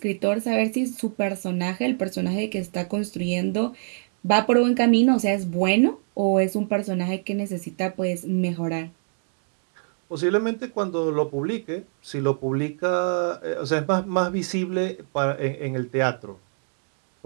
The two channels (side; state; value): left; silent; digital silence